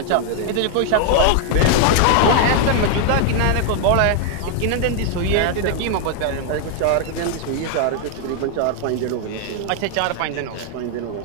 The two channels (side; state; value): both; different; correlation 0.00